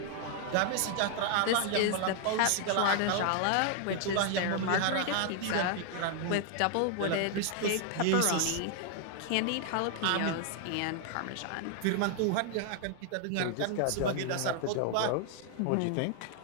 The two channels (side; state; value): both; different; correlation 0.00